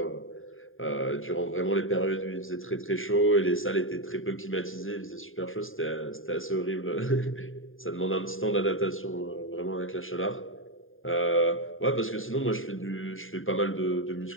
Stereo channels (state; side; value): late; right; 0.59 ms